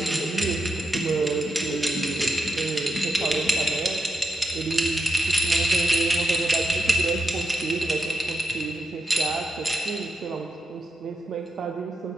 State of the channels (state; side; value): normal; both; correlation 0.86